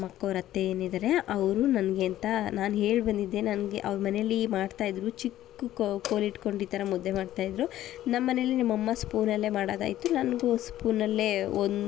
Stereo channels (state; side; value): quieter; right; 13.4 dB